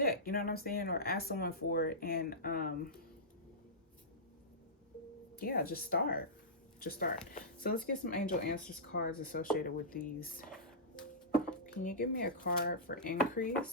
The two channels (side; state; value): both; normal; correlation -0.16